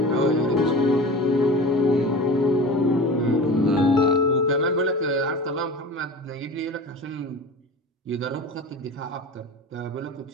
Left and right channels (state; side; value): normal; both; correlation 0.34